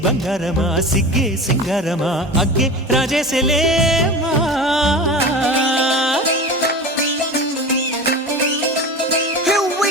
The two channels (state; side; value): normal; both; correlation 0.31